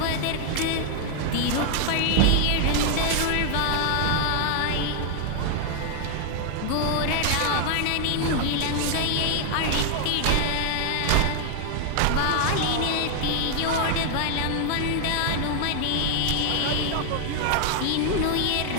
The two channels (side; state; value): both; different; correlation 0.00